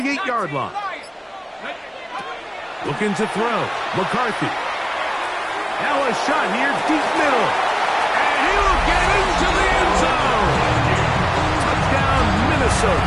line. Looking to throw. McCarthy. Now a shot here, deep middle. And he will get into the end zone. Touchdown, Minnesota.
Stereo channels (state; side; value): identical; both; correlation 1.00